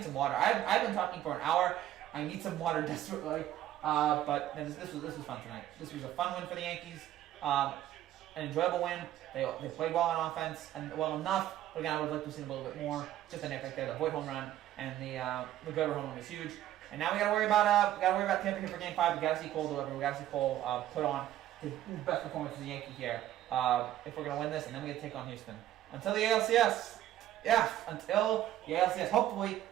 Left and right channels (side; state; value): left; quieter; 12.8 dB